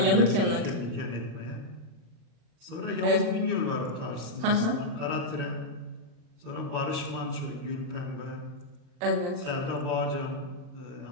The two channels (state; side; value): late; left; 40 ms